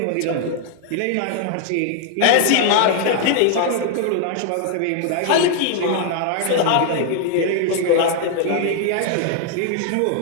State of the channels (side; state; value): both; different; correlation 0.00